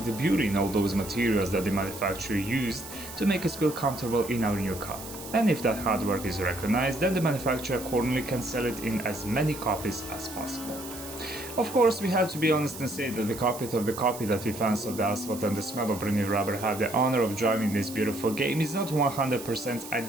the beauty in all those materials that the manufacturer used to make us feel comfortable in our new car. And if that hard work is recognized, then the manufacturer accordingly can sell it in as many copies as possible. Of course, we have to be honest and say that the cockpit of the copy that we fans of the asphalt and the smell of brand new rubber have the honor of driving this beautiful game is not 100%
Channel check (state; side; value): noise; right; hiss, 13 dB below the sound